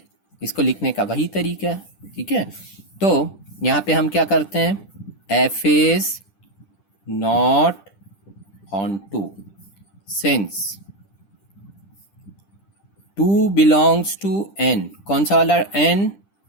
इसको लिखने का वही तरीका है. ठीक है, तो यहाँ पे हम क्या करते हैं? f is not onto since 2 belongs to n. कौन सा वाला n?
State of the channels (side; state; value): right; late; 10 ms